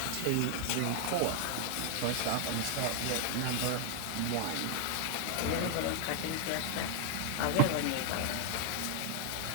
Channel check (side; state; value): both; different; correlation 0.00